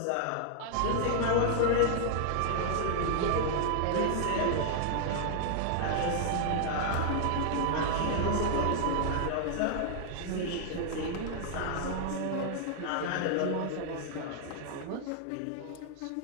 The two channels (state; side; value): different; both; correlation 0.00